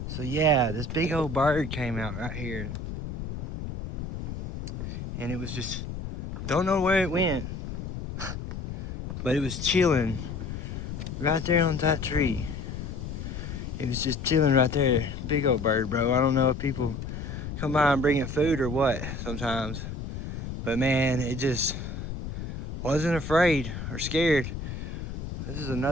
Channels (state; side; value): noise; left; rumble, 7 dB below the sound